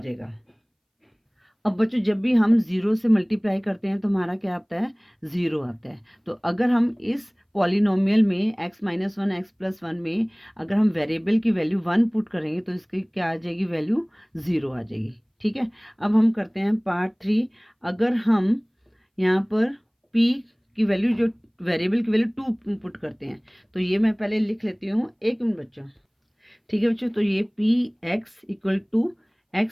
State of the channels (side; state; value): both; identical; correlation 1.00